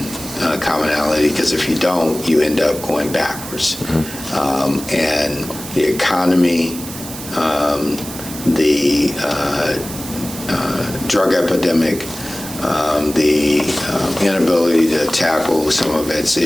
commonality, because if you don't, you end up going backwards. And the economy, the drug epidemic, the inability to tackle some of its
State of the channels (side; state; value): right; noise; hiss, 11 dB below the sound